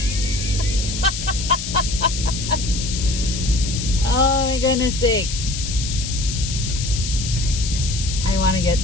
Oh my goodness sake. I want to get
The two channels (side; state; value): left; noise; hiss, 6 dB below the sound